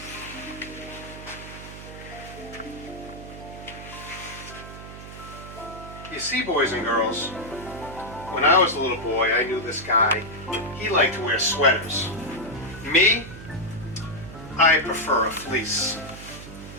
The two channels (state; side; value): noise; right; hum, 13 dB below the sound